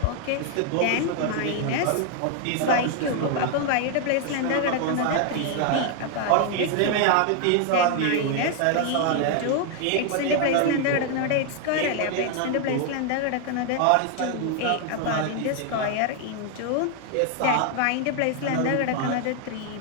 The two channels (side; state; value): both; different; correlation 0.00